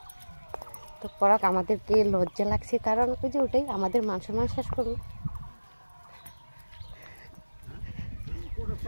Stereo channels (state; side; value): inverted; both; correlation -1.00